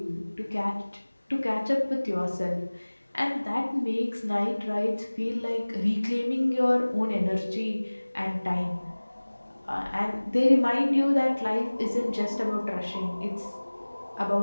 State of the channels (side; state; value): both; inverted; correlation -1.00